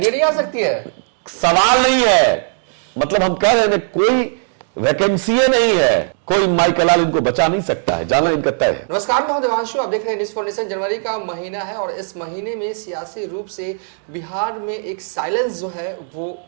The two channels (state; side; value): silent; left; digital silence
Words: नहीं आ सकती है? सवाल नहीं है, मतलब हम कह रहे हैं कोई वैकेंसी नहीं है, कोई माई कलाल इनको बचा नहीं सकता है, जाना इनका तय है। नमस्कार, मैं देवांशु, आप देख रहे हैं न्यूज़ फॉर नेशन। जनवरी का महीना है और इस महीने में सियासी रूप से बिहार में एक साइलेंस जो है वो